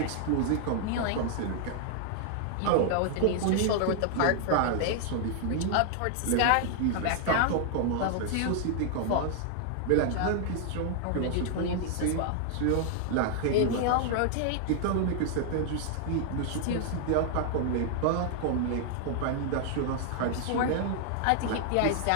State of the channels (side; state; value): both; different; correlation 0.00